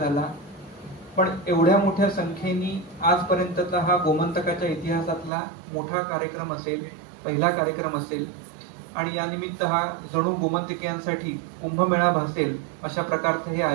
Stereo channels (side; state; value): left; drops out; at 5.3 s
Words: पण एवढ्या मोठ्या संख्येने आजपर्यंतचा हा गोमंतकाच्या इतिहासातला मोठा कार्यक्रम असेल, पहिला कार्यक्रम असेल आणि या निमित्त हा जणू गोमंतकीयांसाठी कुंभमेळा भासेल अशा प्रकारचं हे